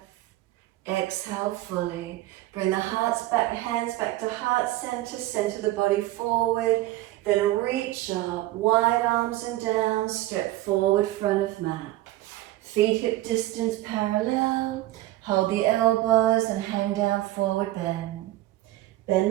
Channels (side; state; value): left; quieter; 16.3 dB